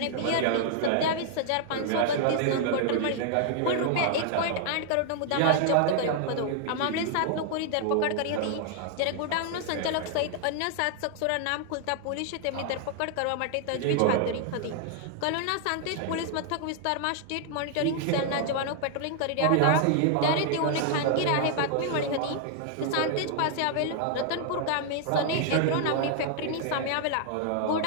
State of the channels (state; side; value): different; both; correlation 0.00